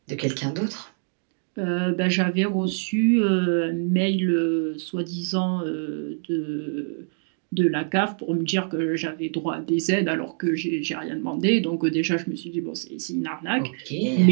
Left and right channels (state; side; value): silent; left; 59 dB below the other